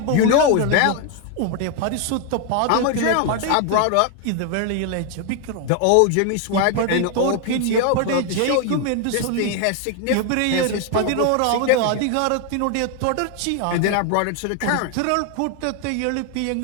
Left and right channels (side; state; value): both; different; correlation 0.01